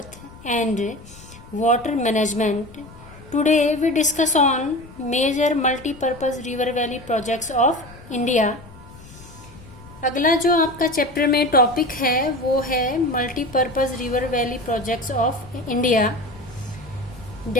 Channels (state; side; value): noise; left; rumble, 19 dB below the sound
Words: and water management. Today we discuss on major multi-purpose river valley projects of India. अगला जो आपका chapter में topic है वो है multipurpose river valley projects of India.